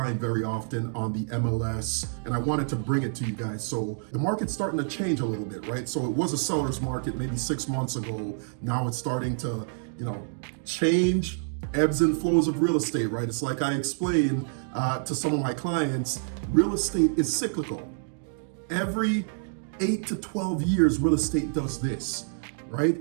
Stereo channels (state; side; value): silent; left; digital silence